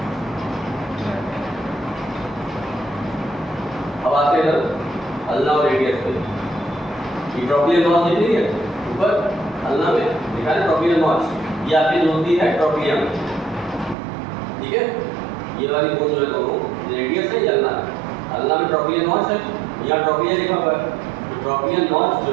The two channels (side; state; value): left; drops out; at 14.0 s